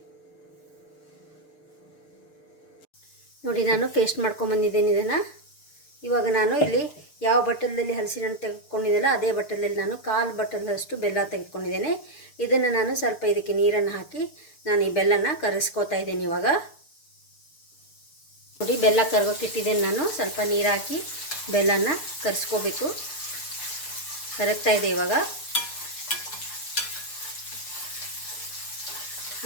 ನೋಡಿ, ನಾನು ಪೇಸ್ಟ್ ಮಾಡ್ಕೊಂಬಂದಿದ್ದೀನಿ ಇದನ್ನು. ಇವಾಗ ನಾನು ಇಲ್ಲಿ ಯಾವ ಬಟ್ಟಲಲ್ಲಿ ಹಲಸಿನ ಹಣ್ಣು ತೆಗೆದುಕೊಂಡಿದ್ದೆಲ್ಲ ಅದೇ ಬಟ್ಟಲಲ್ಲಿ ನಾನು 1/4 ಬಟ್ಟಲಷ್ಟು ಬೆಲ್ಲ ತೆಗೆದುಕೊಂಡಿದ್ದೇನೆ. ಇದನ್ನು ನಾನು ಸ್ವಲ್ಪ ಇದಕ್ಕೆ ನೀರನ್ನು ಹಾಕಿ ನಾನು ಈ ಬೆಲ್ಲನ ಕರಗಿಸ್ಕೋತಾ ಇದ್ದೀನಿ. ಇವಾಗ ನೋಡಿ, ಬೆಲ್ಲ ಕರಗೋಕ್ಕಿಟ್ಟಿದ್ದೇನೆ ನಾನು. ಸ್ವಲ್ಪ ನೀರು ಹಾಕಿ ಬೆಲ್ಲನ ಕರಗಿಸ್ಕೋಬೇಕು. ಕರಗ್ತಾ ಇದೆ ಇವಾಗ.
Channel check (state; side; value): late; right; 6.7 ms